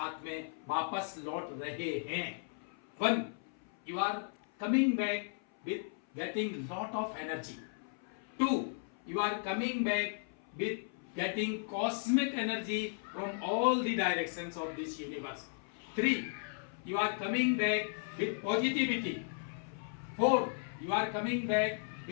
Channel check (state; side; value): silent; right; 54 dB below the other